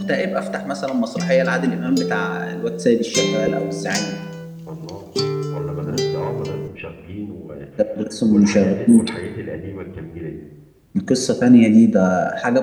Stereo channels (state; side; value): identical; both; correlation 1.00